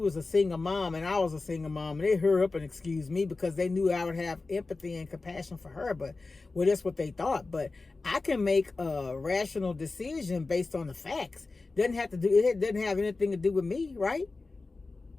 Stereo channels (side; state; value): right; quieter; 3.7 dB